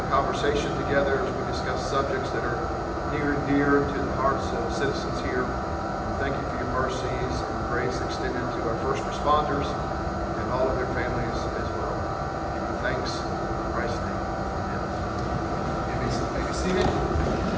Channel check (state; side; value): identical; both; correlation 1.00